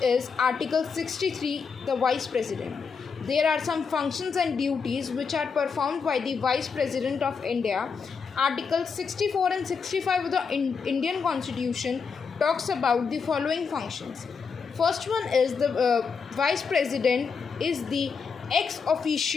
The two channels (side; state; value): right; quieter; 5.6 dB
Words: is Article 63, the Vice President. There are some functions and duties which are performed by the Vice President of India. Article 64 and 65 of the Indian Constitution talks about the following functions. First one is the Vice President is the ex